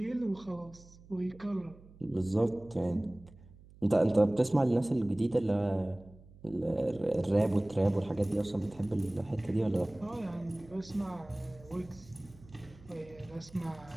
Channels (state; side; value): noise; right; hum, 22 dB below the sound